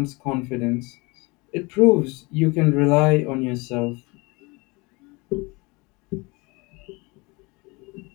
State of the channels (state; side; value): quieter; right; 26.1 dB